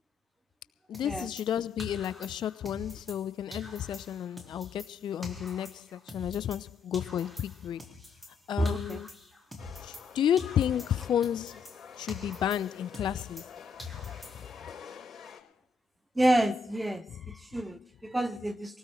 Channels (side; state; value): right; quieter; 4.4 dB